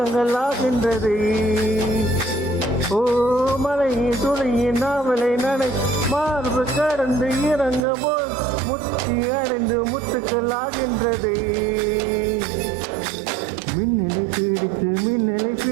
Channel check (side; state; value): left; drops out; at 7.8 s